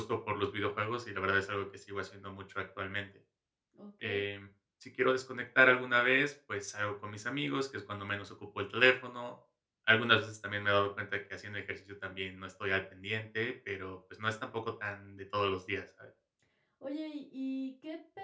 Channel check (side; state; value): both; identical; correlation 1.00